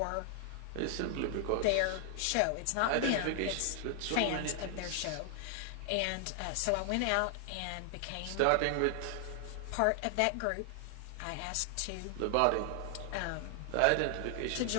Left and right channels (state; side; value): different; both; correlation 0.00